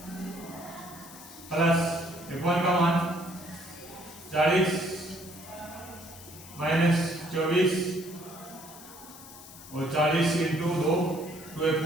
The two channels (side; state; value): left; noise; hiss, 17 dB below the sound